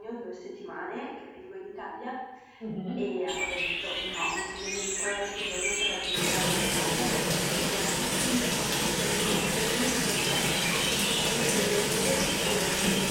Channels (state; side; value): identical; both; correlation 1.00